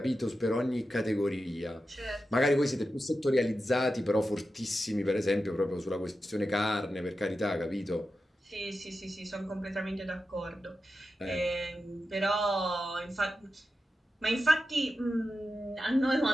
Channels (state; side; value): normal; both; correlation 0.91